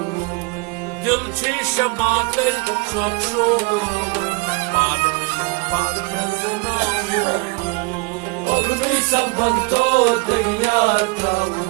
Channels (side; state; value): left; quieter; 27.6 dB